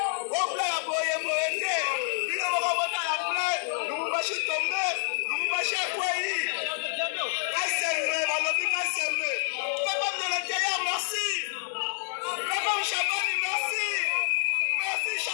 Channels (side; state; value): right; silent; 59 dB below the other